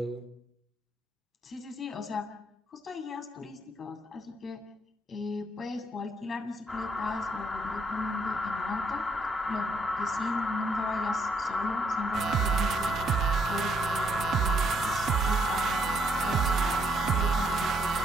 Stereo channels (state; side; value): normal; both; correlation 0.73